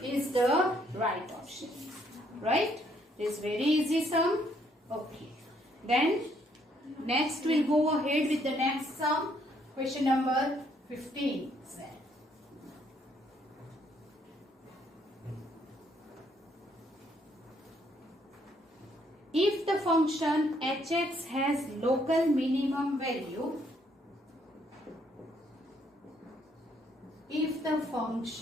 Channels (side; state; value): both; normal; correlation 0.69